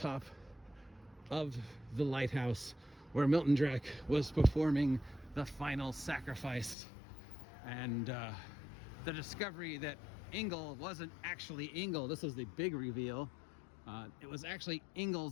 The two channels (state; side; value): drops out; right; at 6.8 s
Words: of the lighthouse where Milton Drack was performing the final sacrifice. And the discovery that Engel wasn't actually Engel. This was the big reveal. It was actually